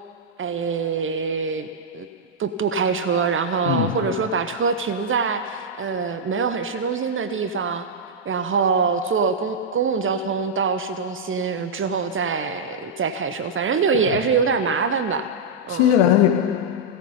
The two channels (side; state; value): both; normal; correlation -0.07